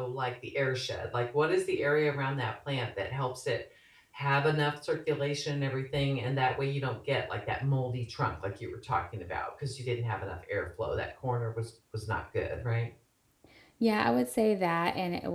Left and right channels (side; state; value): both; identical; correlation 1.00